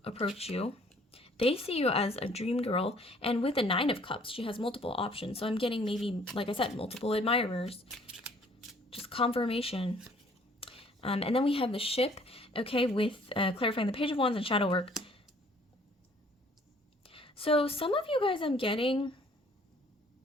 approach you. They see you as a dream girl, and with the 9 of Cups, she has multiple options. So I'm getting maybe, like I said, multiple admirers. Just confirmation. And then we have the ship, okay, with clarifying the Page of Wands and shadow work. So some of you guys, I'm getting,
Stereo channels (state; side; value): normal; both; correlation 0.58